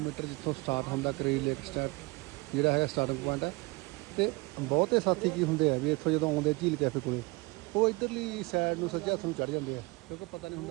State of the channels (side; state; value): left; quieter; 25.7 dB